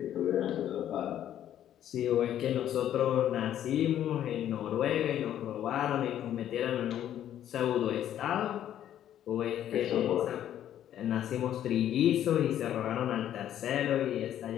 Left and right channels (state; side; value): quieter; right; 11.1 dB